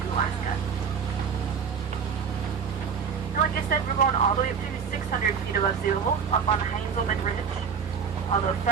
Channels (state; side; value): quieter; left; 6.6 dB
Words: to Alaska. And like I said, we're going all the way up to 600 feet above sea level, up on Heinzelman Ridge. Although